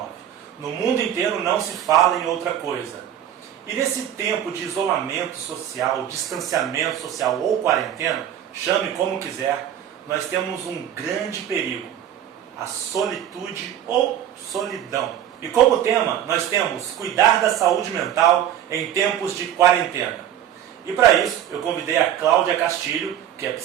No mundo inteiro não se fala em outra coisa. E nesse tempo de isolamento social, distanciamento social ou quarentena, chame como quiser, nós temos um grande perigo, a solitude ou solidão. E como tema, nós temos cuidar da saúde mental em tempos de quarentena. E para isso, eu convidei a Cláudia Castilho, que é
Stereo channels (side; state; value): left; quieter; 10.6 dB